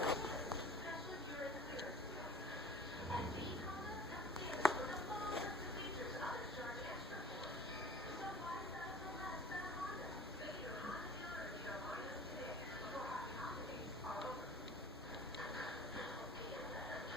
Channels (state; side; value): normal; both; correlation 0.44